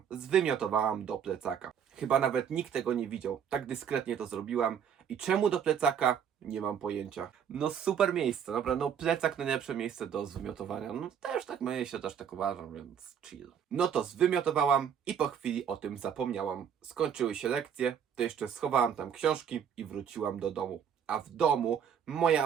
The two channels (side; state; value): left; quieter; 8.2 dB